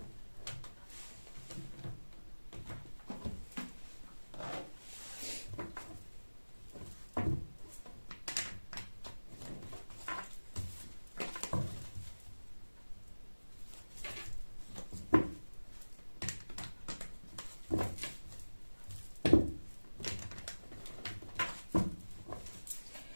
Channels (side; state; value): both; inverted; correlation -1.00